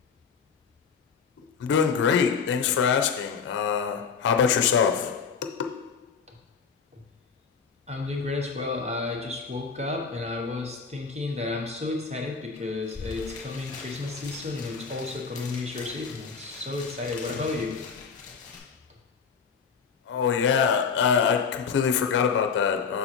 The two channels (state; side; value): quieter; right; 6.0 dB